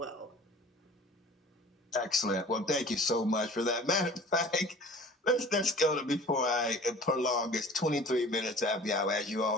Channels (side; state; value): both; normal; correlation 0.45